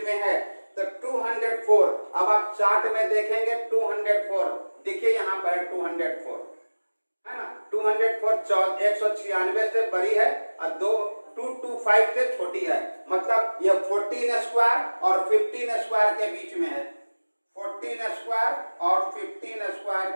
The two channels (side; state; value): both; inverted; correlation -1.00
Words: में है, तो 204। अब आप चार्ट में देखेंगे 204, देखिए यहाँ पर 204 है ना, 204 196 से बड़ी है और 225 से छोटी है, मतलब ये 14 स्क्वायर और 15 स्क्वायर के बीच में है, 14 स्क्वायर और 15 स्क्वायर